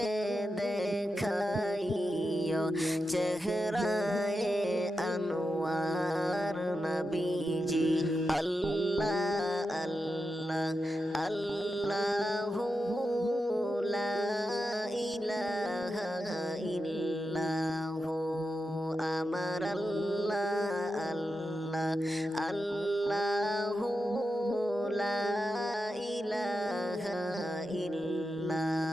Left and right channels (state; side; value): normal; both; correlation 0.89